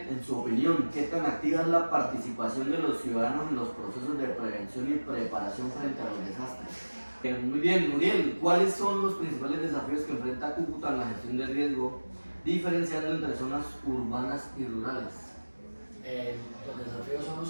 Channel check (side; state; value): both; inverted; correlation -1.00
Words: en su opinión, ¿qué tan activa es la participación de los ciudadanos en los procesos de prevención y preparación frente a los desastres? Muy bien, Muriel, ¿cuáles son los principales desafíos que enfrenta Cúcuta en la gestión del riesgo, diferenciando entre zonas urbanas y rurales? Los desafíos son